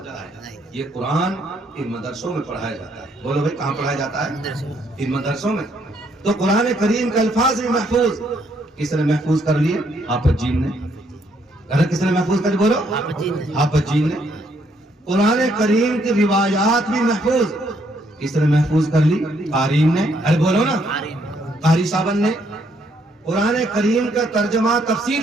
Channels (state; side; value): normal; both; correlation 0.71